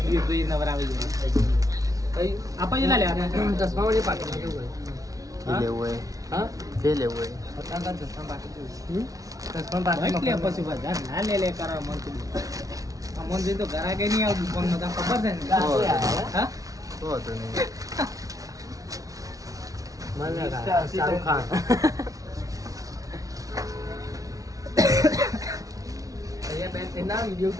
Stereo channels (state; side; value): late; left; 0.17 ms